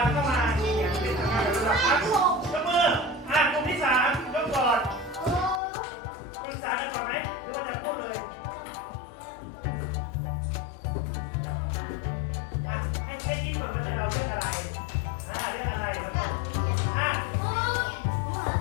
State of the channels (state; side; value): drops out; right; at 5.6 s